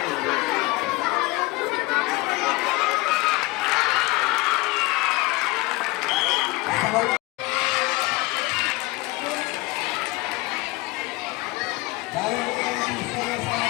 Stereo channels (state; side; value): quieter; right; 22.5 dB